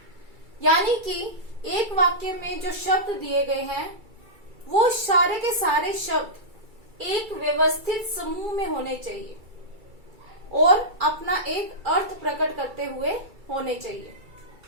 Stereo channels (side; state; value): left; late; 2.3 ms